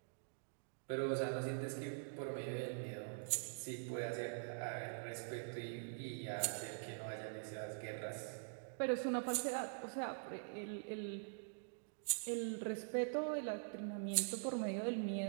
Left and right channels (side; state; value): left; silent; digital silence